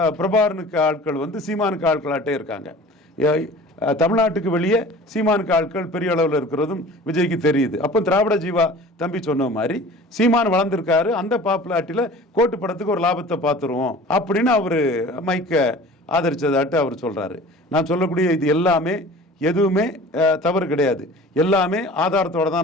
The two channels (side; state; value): both; normal; correlation 0.43